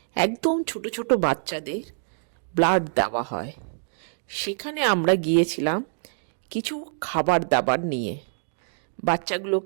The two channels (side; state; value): left; silent; digital silence